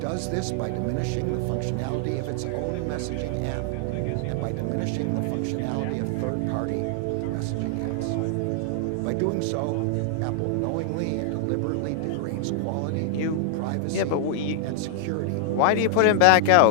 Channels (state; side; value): different; both; correlation -0.01